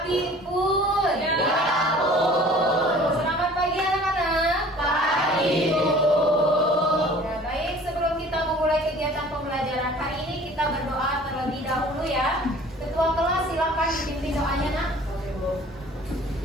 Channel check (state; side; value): normal; both; correlation 0.48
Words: pun. Ya pun. Selamat pagi anak-anak. Pagi Bu. Ya, baik, sebelum kita memulai kegiatan pembelajaran hari ini kita berdoa terlebih dahulu ya. Ketua kelas silakan dipimpin doanya nak.